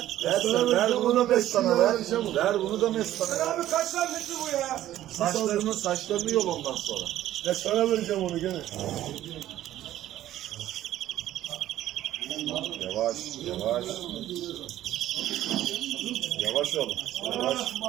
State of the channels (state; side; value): quieter; left; 13.3 dB